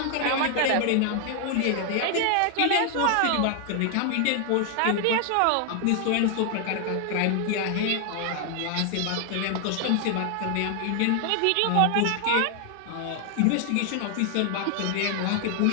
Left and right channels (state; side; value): different; both; correlation 0.00